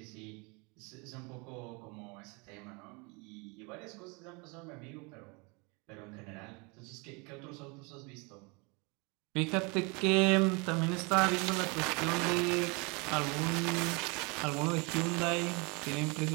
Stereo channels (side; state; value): left; quieter; 29.7 dB